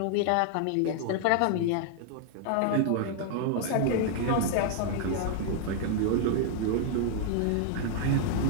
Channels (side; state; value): both; different; correlation -0.01